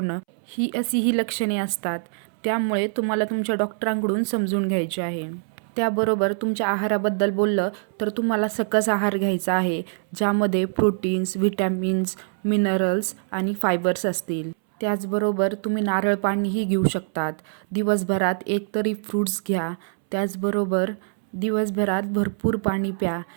ही अशी ही लक्षणे असतात. त्यामुळे तुम्हाला तुमच्या डॉक्टरांकडून समजून घ्यायचे आहे. त्याबरोबर तुमच्या आहाराबद्दल बोललं तर तुम्हाला सकस आहार घ्यायचा आहे, ज्यामध्ये प्रोटीन्स, व्हिटॅमिन्स, मिनरल्स आणि फायबर्स असतील. त्याचबरोबर तुम्ही नारळ पाणीही घेऊ शकतात. दिवसभरात एकतरी फ्रूट्स घ्या. त्याचबरोबर दिवसभरात भरपूर पाणी प्या,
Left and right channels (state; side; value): silent; left; 63 dB below the other